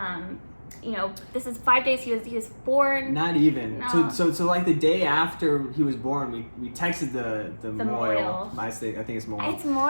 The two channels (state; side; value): inverted; both; correlation -1.00